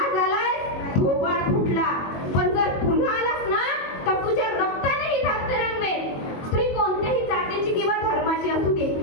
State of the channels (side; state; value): right; late; 22 ms